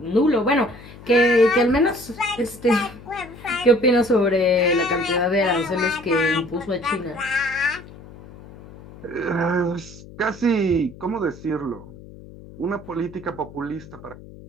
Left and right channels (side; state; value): left; noise; hum, 18 dB below the sound